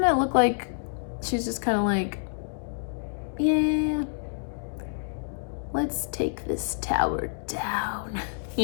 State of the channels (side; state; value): right; silent; digital silence